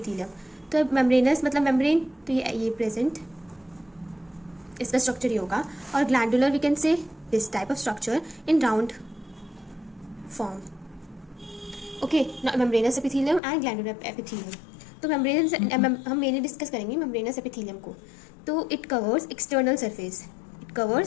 तो membranous मतलब membrane, तो ये present, इसका structure ये होगा, और glandular we can say this type of structure in round form. Okay, membranes epithelium and glandular epithelium. तो मेम्ब्रेनस हम मेनली डिस्कस करेंगे मेम्ब्रेनस एपिथेलियम को. तो it covers external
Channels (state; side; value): drops out; right; at 13.4 s